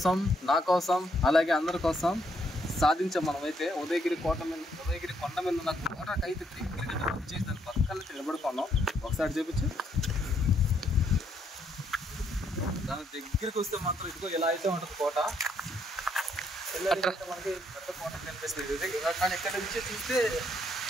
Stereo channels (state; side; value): normal; both; correlation 0.72